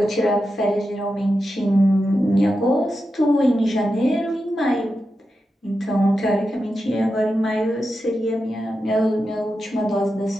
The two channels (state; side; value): normal; both; correlation 0.89